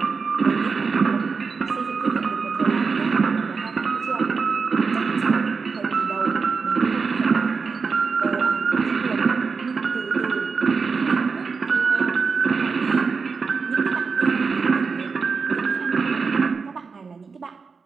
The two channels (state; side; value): quieter; left; 5.0 dB